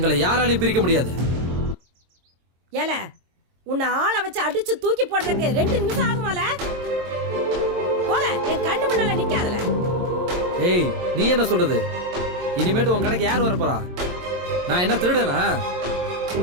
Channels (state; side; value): late; left; 22 ms